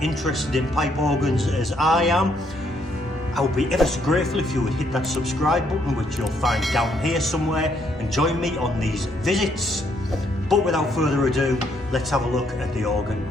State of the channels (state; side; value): normal; both; correlation 0.71